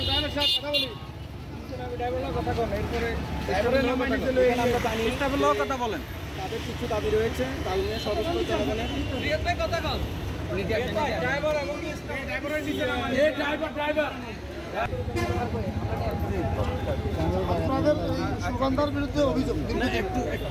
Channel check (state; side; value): identical; both; correlation 1.00